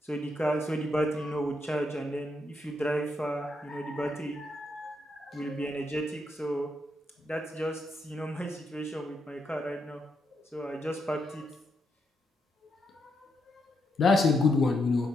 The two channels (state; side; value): normal; both; correlation 0.80